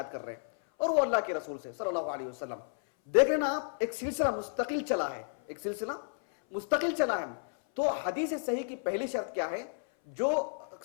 کر رہے ہیں اور وہ اللہ کے رسول سے صلی اللہ علیہ وسلم. دیکھ رہے نا آپ ایک سلسلہ مستقل چلا ہے. ایک سلسلہ مستقل چلا ہے. تو حدیث صحیح کی پہلی شرط کیا ہے؟ جو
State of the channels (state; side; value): silent; right; 56 dB below the other